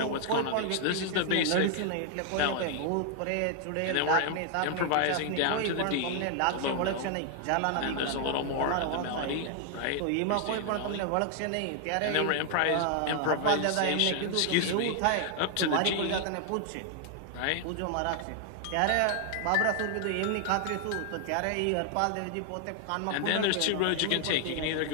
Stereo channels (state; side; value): different; both; correlation 0.00